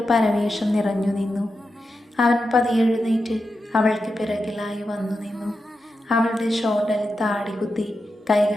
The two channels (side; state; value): both; normal; correlation 0.89